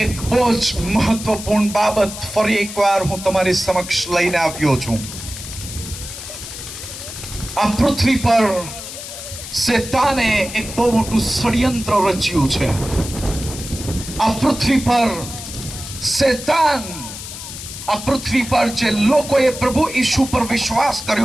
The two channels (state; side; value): noise; left; hiss, 10 dB below the sound